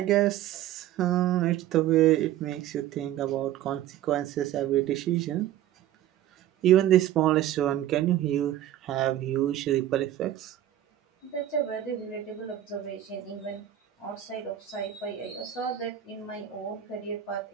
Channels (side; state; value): left; quieter; 12.2 dB